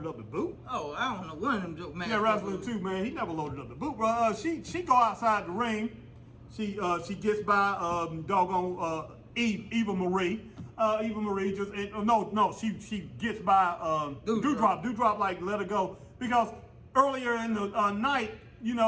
up the boot. Oh, I don't know one of them joke man. Yeah, Wrestling 2, man, he never loaded up the boot, bro. She go outside the ring. She gets by Eva Marie. Eva Marie she gets by Doudrop. Doudrop like let her go because earlier in the night,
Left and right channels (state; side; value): identical; both; correlation 1.00